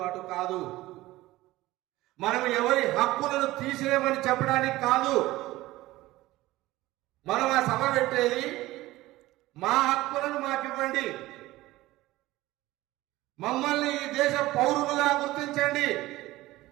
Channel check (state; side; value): quieter; left; 17.6 dB